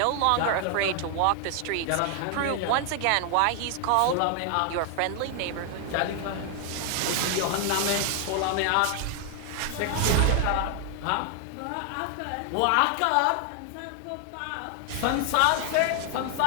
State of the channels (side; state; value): both; different; correlation 0.00